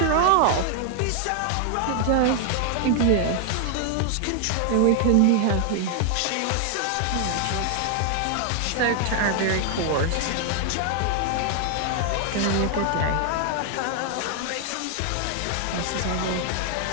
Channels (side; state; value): both; different; correlation 0.00